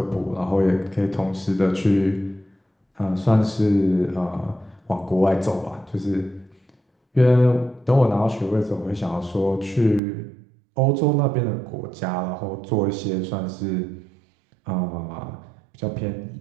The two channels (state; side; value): drops out; left; at 10.0 s